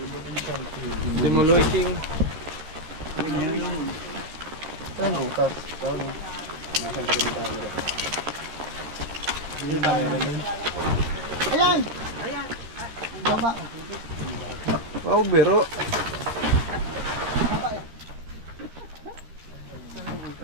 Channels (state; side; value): late; left; 13 ms